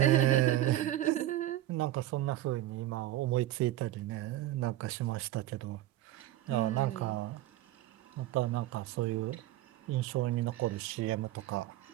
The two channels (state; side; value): quieter; left; 14.4 dB